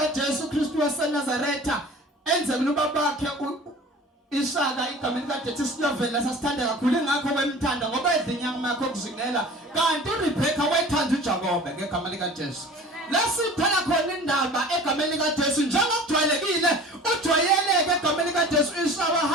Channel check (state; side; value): normal; both; correlation 0.42